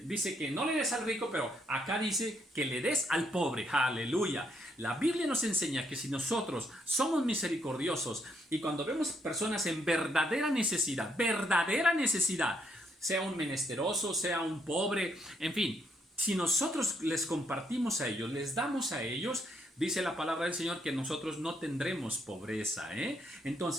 dice que no le des al rico, pero acá dice que le des al pobre. ¡Aleluya! La Biblia nos enseña que si nosotros somos misericordiosos y cuando vemos personas en verdadera necesidad, sea un menesteroso, sea un pobre, en fin, si nosotros les compartimos a ellos, les damos a ellos, dice la palabra del Señor que nosotros no tendremos pobreza, ¿eh?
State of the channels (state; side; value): normal; both; correlation 0.74